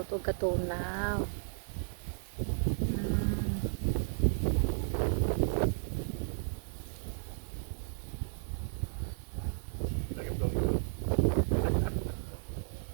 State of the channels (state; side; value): silent; left; digital silence